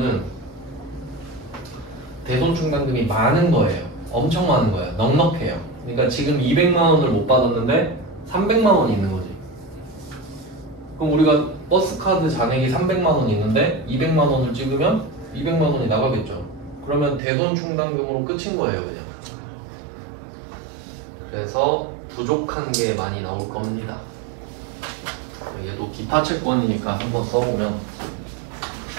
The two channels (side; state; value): left; drops out; at 17.2 s